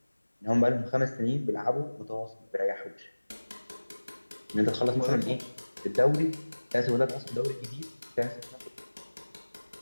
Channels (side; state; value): both; inverted; correlation -1.00